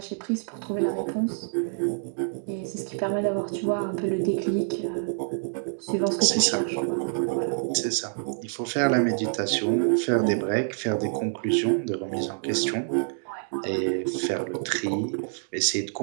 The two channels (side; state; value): left; silent; digital silence